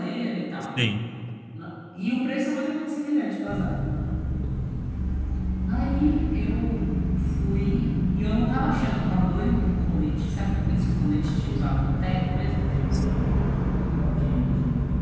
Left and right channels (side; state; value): both; identical; correlation 1.00